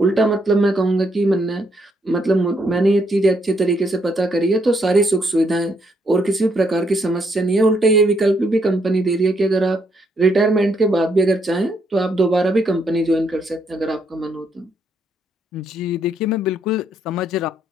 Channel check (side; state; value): both; normal; correlation 0.74